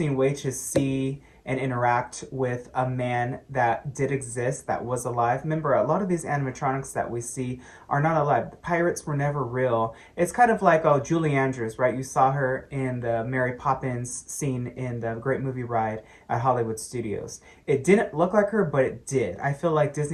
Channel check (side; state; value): both; identical; correlation 1.00